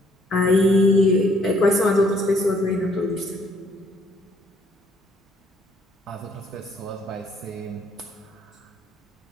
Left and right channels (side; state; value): both; normal; correlation 0.65